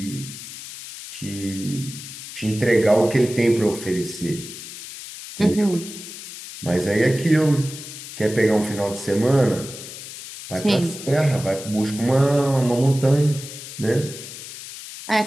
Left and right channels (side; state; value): left; noise; hiss, 12 dB below the sound